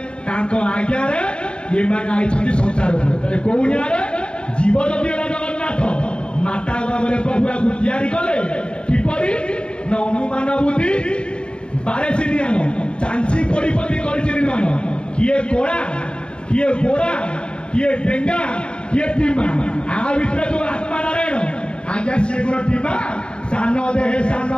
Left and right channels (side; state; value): right; late; 0.053 ms